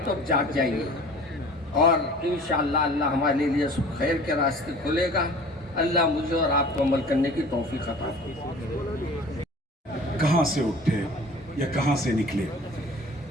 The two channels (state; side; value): normal; both; correlation 0.44